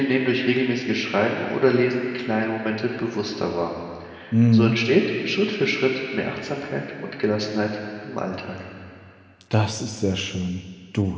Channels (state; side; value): identical; both; correlation 1.00